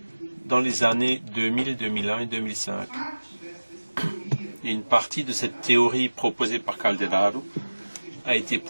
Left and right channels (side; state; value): both; inverted; correlation -1.00